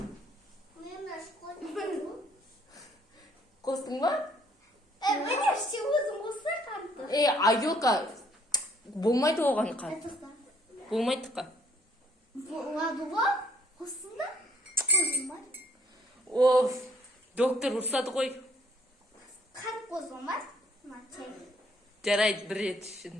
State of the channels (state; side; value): normal; both; correlation 0.63